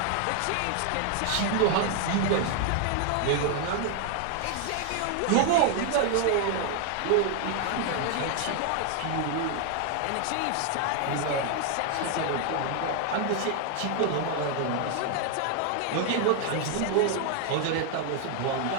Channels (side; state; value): both; different; correlation 0.00